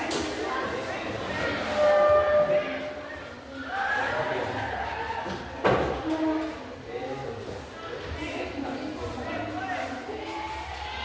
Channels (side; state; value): both; identical; correlation 1.00